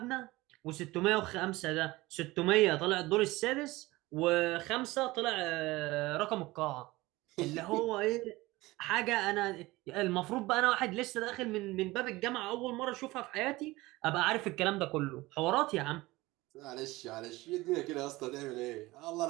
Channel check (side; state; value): left; quieter; 20.0 dB